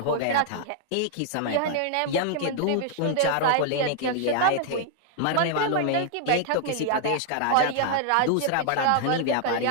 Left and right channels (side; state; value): both; different; correlation 0.00